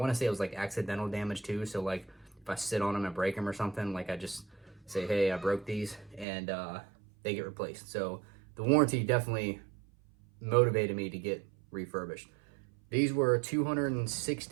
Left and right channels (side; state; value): left; drops out; at 6.2 s